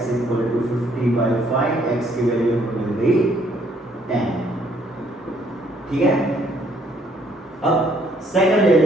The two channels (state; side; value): normal; both; correlation 0.66